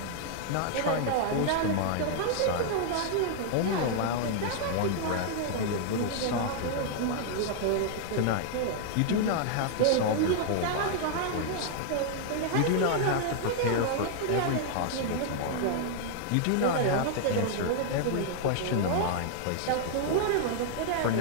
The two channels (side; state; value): both; different; correlation 0.00